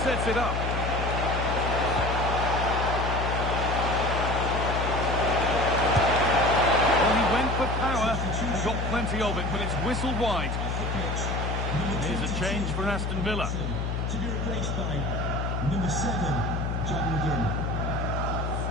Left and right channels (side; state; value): left; noise; hum, 1 dB below the sound